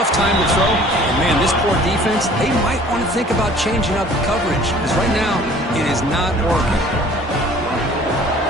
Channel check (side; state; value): both; normal; correlation 0.51